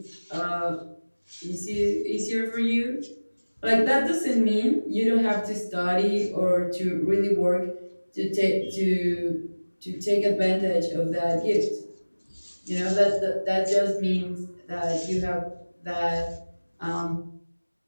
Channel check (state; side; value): inverted; both; correlation -1.00